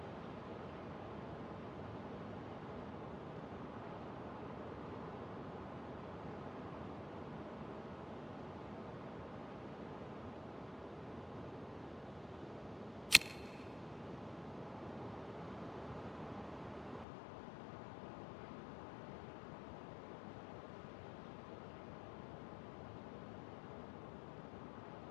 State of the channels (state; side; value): drops out; right; at 17.1 s